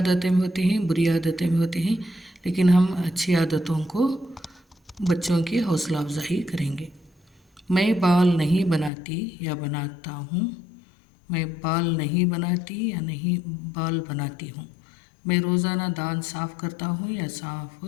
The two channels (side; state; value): right; drops out; at 8.9 s